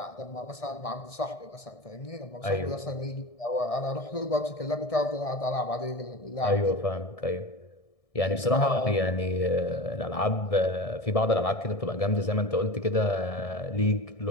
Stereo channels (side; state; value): right; late; 1.6 ms